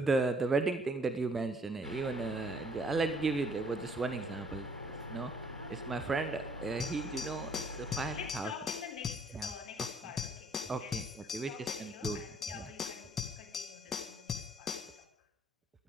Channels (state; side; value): normal; both; correlation 0.62